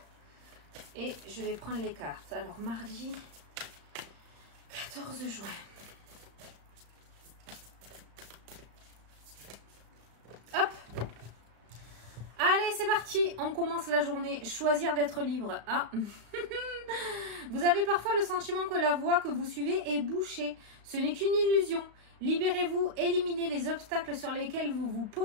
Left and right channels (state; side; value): late; left; 35 ms